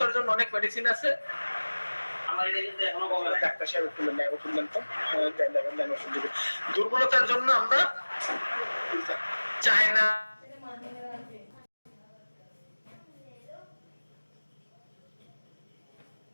জন্য অনেক মেডিসিন আছে। দুর্বলতার জন্য আমরা চায়না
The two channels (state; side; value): inverted; both; correlation -1.00